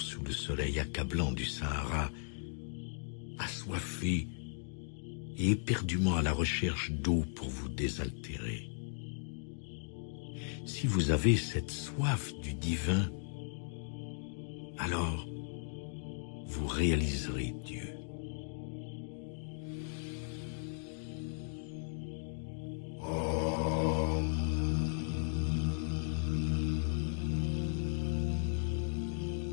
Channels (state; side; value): silent; right; digital silence